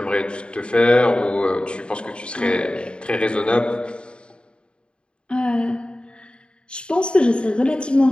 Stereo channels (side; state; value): right; late; 0.053 ms